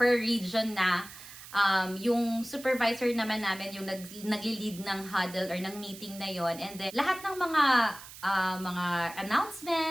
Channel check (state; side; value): noise; right; hiss, 16 dB below the sound